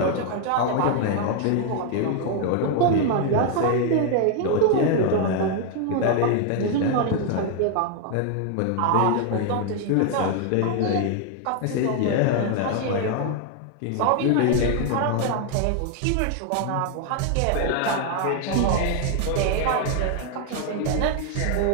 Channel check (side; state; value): both; different; correlation 0.00